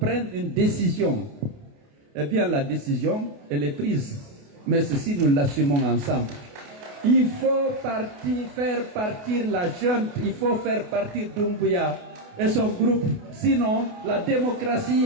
une décision. Eh bien, la décision, elle est prise. Mais ceci, nous l'assumons ensemble. Il faut faire partir la junte, il faut faire partir Doumbouya et son groupe. Sinon, la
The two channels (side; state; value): left; late; 28 ms